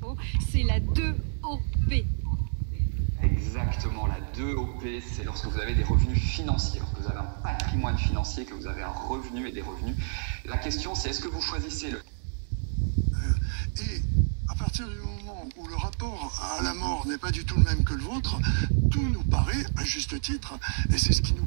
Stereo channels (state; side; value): silent; left; digital silence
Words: Attention, c'est la 2OP. Exactement, la 2OP, c'est lorsque vous avez des revenus financiers, lorsque vous avez un patrimoine financier, que vous avez un revenu et des revenus. La question, c'est est-ce que vous choisissez le... Et à partir du moment où le rapport à la mort n'est pas du tout le même que le vôtre, tout nous paraît à juste titre, et c'est ce qui nous